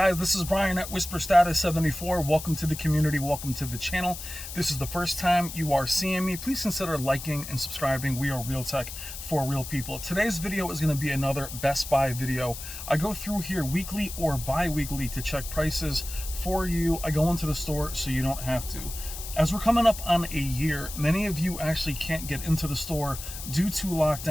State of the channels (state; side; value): noise; left; hiss, 10 dB below the sound